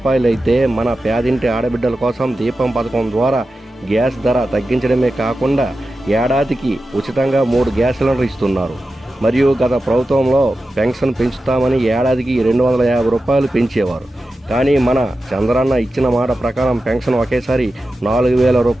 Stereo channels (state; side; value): normal; both; correlation 0.92